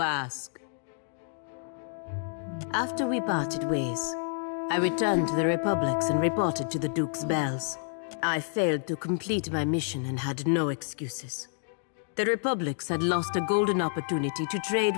ask. After we parted ways, I returned to the Republics and reported to the Duke's bells. I failed to complete my mission and had no excuses. The Republics had lost a golden opportunity to trade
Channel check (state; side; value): silent; right; digital silence